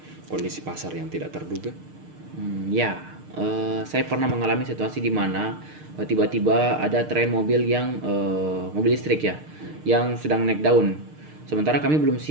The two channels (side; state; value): left; late; 6.6 ms